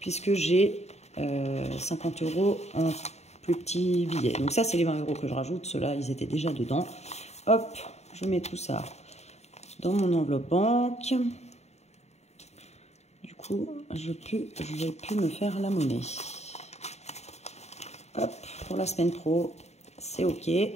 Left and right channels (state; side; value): late; right; 0.32 ms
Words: Puisque j'ai 50 € en plus petits billets. Donc ça, c'est les 20 € que je rajoute. Ceux-là, ils étaient déjà dedans. Hop, je mets tout ça dans mon enveloppe banque. Du coup, je vais plus me faire la monnaie. Hop, pour la semaine pro, c'est OK. Et